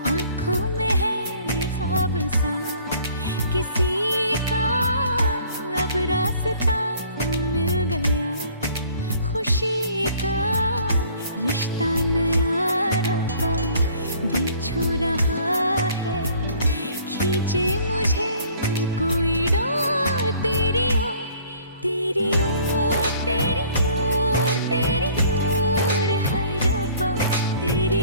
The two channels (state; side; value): inverted; both; correlation -0.55